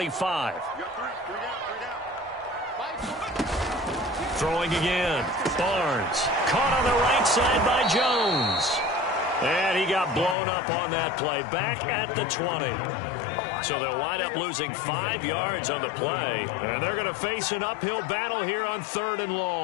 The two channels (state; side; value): drops out; right; at 10.4 s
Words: Throwing again. Barnes. Caught on the right side by Jones. And he got blown up on that play. Back at the 20. So they'll wind up losing 5 yards on the play. And they're going to face an uphill battle here on 3rd and